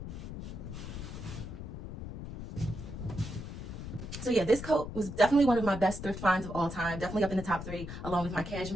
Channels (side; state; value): left; noise; rumble, 8 dB below the sound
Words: So yeah, this coat was definitely one of my best thrift finds of all time. Definitely up in the top 3, along with my